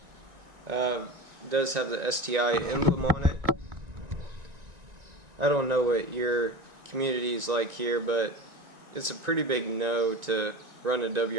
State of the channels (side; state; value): left; late; 1.9 ms